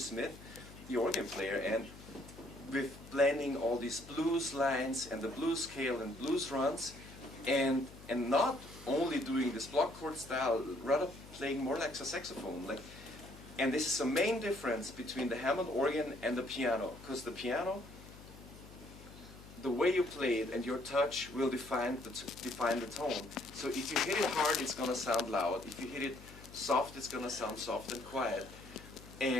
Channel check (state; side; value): noise; left; hum, 18 dB below the sound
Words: the organ player, and with blending all these blues lines and the blues scale and blues runs, and not only doing this block chord style, rather playing more like a saxophone. And this is the main difference between the Hammond organ and the piano, because the piano, the way you play it and your touch will define the tone. So if you hit it hard, it's going to sound loud. If you hit it soft, it's going to sound soft and quiet.